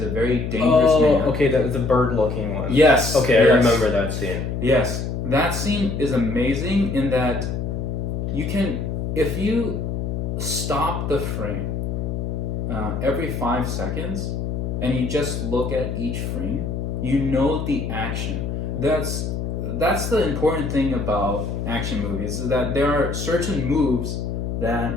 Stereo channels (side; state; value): left; noise; hum, 3 dB below the sound